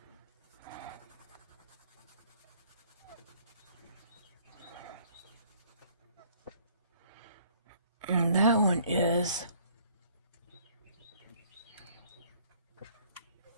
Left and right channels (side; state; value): both; inverted; correlation -0.60